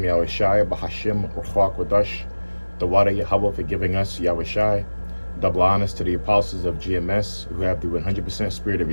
Bahashim Ruach Wadash, the water Yahweh for giving us Yahushai. Double honors to the apostles of GMS who have the 100% spirit of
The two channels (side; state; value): both; inverted; correlation -1.00